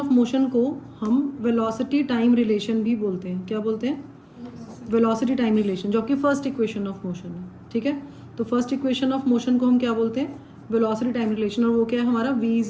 मोशन को हम वेलोसिटी टाइम रिलेशन भी बोलते हैं। क्या बोलते हैं? वेलोसिटी टाइम रिलेशन, जो कि फर्स्ट इक्वेशन ऑफ मोशन है, ठीक है। तो फर्स्ट इक्वेशन ऑफ मोशन को हम क्या बोलते हैं? वेलोसिटी टाइम रिलेशन, और वो क्या है हमारा v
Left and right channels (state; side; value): identical; both; correlation 1.00